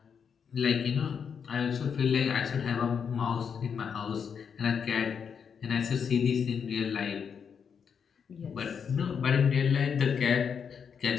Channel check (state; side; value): quieter; right; 6.8 dB